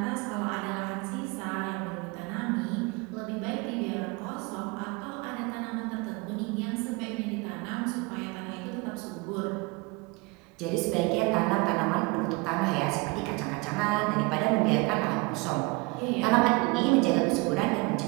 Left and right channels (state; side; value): quieter; left; 26.5 dB